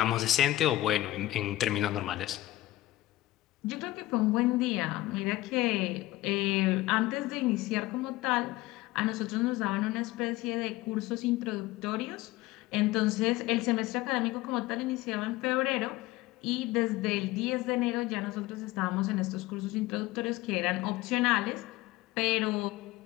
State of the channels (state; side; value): quieter; right; 17.1 dB